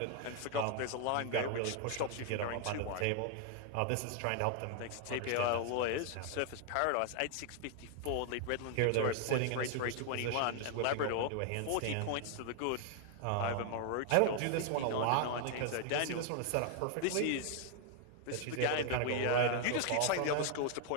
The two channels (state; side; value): different; both; correlation 0.00